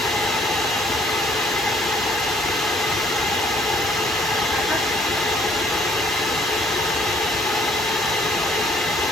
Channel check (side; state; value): both; normal; correlation 0.61